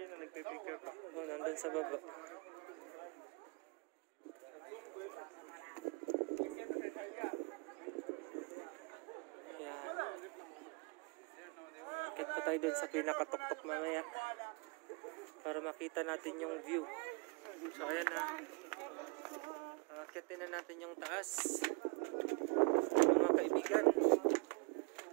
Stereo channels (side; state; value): left; quieter; 32.9 dB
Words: Oh, nandun sa baba. Ayan. Akit pa tayo dun sa pinakatuktok mamaya para makita natin yung view. So ayan na. Akitin na natin yung taas. Mga